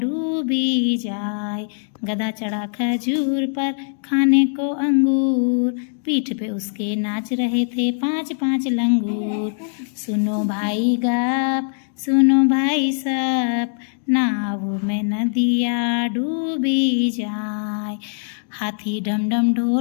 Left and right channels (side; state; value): right; silent; digital silence